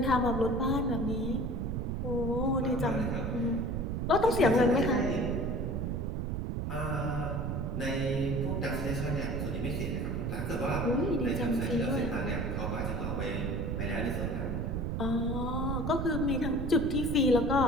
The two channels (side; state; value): right; noise; rumble, 1 dB below the sound